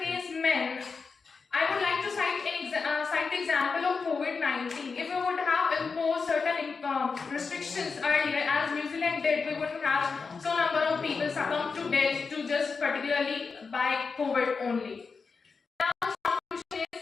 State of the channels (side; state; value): right; quieter; 4.9 dB